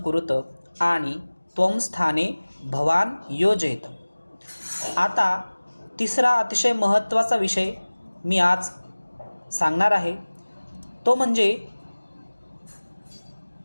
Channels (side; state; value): both; inverted; correlation -1.00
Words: आणि त्वं स्थाने भवान योजयेत। आता तिसरा अतिशय महत्त्वाचा विषय मी आज सांगणार आहे, तो म्हणजे